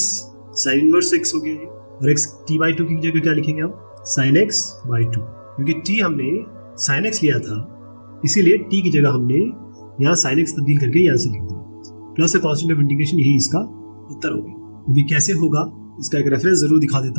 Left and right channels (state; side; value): inverted; both; correlation -1.00